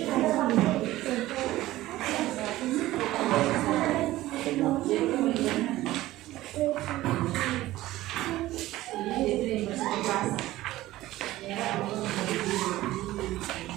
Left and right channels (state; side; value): quieter; left; 16.4 dB